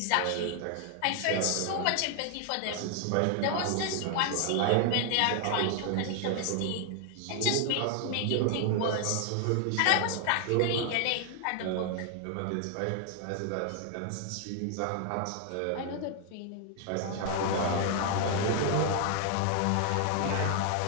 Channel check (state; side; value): different; both; correlation 0.00